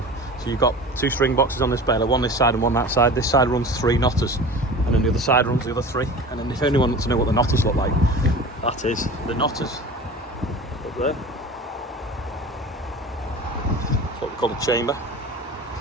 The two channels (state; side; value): normal; both; correlation 0.36